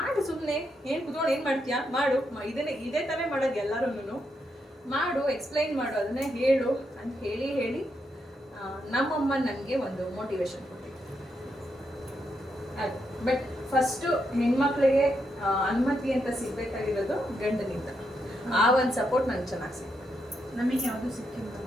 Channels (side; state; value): both; normal; correlation 0.81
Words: ಸುಮ್ಮನೆ ಏನು ಕುತ್ಕೊಂಡು ಏನು ಮಾಡ್ತೀಯಾ, ಮಾಡು, ಇದೇ ತಾನೇ ಮಾಡೋದು ಎಲ್ಲರೂ, ಮಾಡು, ಎಕ್ಸ್ಪ್ಲೈನ್ ಮಾಡು, ಅದನ್ನೇ ಹೇಳು ಅಂತ ಹೇಳಿ ನಮ್ಮಮ್ಮ ನನಗೆ ಒಂದು ಮೋಟಿವೇಶನ್ ಕೊಟ್ಟಿದ್ದು. ಅದು ಬಟ್ ಫಸ್ಟು ಹೆಣ್ಮಕ್ಳಿಗೆ ಅನುಮತಿ ಅಂತ ಸಿಗ್ಬೇಕಾಗಿರೋದು ಗಂಡನಿಂದ. ಆ ಒಂದು ಸಪೋರ್ಟ್ ನಂಗೆ ಚೆನ್ನಾಗಿ ಸಿಕ್ತು. ನಮಗೆ ಯಾವುದು ಸಿಕ್ಕಿಲ್ಲ,